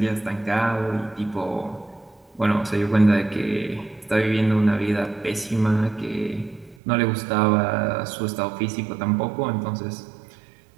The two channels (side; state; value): left; drops out; at 6.8 s